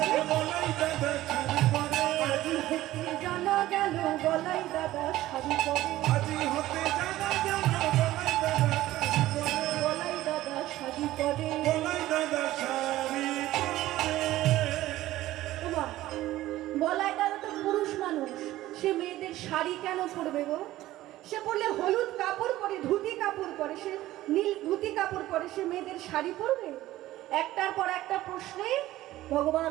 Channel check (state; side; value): quieter; left; 15.6 dB